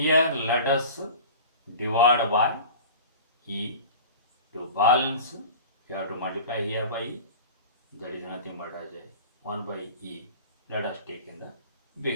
let us divide by e to balance. We have to multiply here by e. That is nothing but as a 1 by e. Let us take in the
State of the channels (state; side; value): inverted; both; correlation -0.38